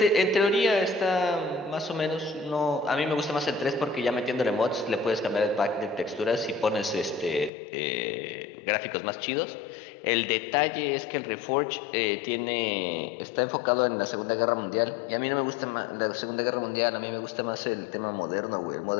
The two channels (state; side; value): drops out; right; at 7.5 s